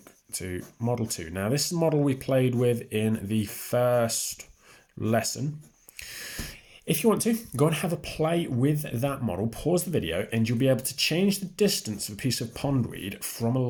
to Model 2. Now, this is the model we played with in the first lesson. If you want to, go and have a play with that model, pause the video, and you'll be able to change the distance of a piece of pondweed from a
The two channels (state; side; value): identical; both; correlation 1.00